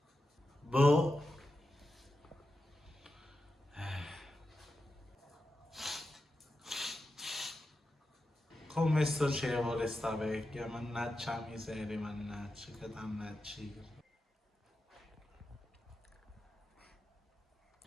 Boh. Come socievole sta vecchia, mannaggia la miseria, mannaggia, che dannaggia.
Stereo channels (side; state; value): both; normal; correlation 0.90